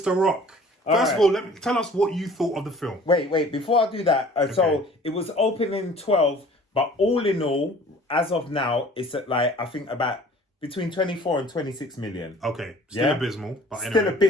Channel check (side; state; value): both; normal; correlation 0.50